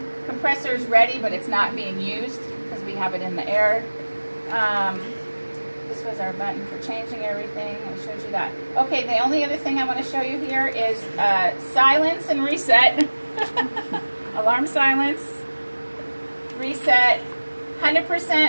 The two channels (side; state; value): both; inverted; correlation -1.00